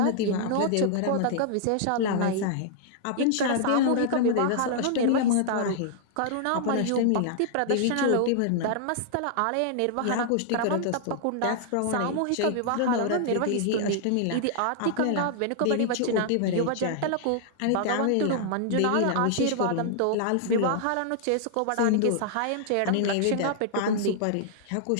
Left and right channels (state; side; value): different; both; correlation -0.01